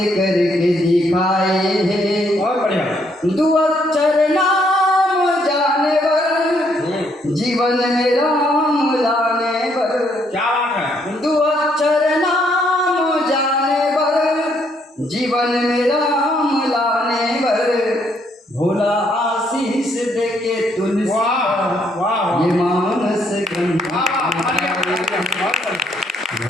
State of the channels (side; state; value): both; normal; correlation 0.71